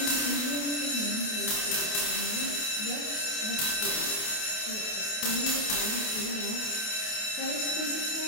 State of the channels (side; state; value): right; late; 28 ms